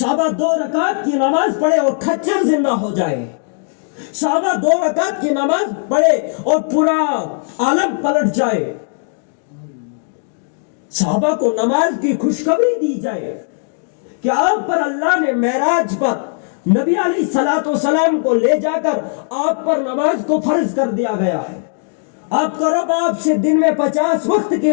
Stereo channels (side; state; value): right; silent; 63 dB below the other